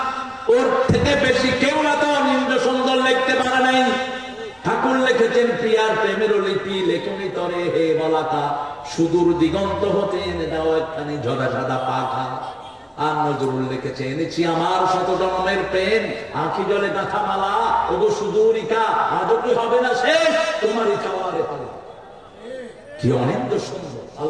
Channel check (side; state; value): both; identical; correlation 1.00